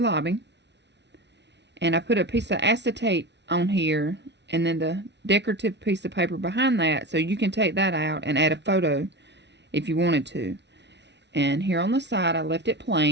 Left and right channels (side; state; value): left; late; 0.50 ms